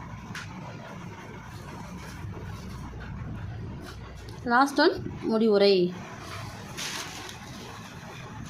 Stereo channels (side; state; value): both; identical; correlation 1.00